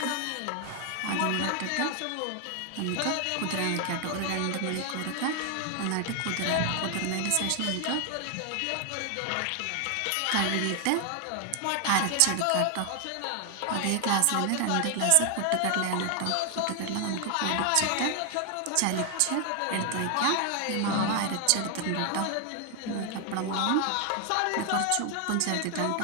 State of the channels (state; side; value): different; both; correlation 0.00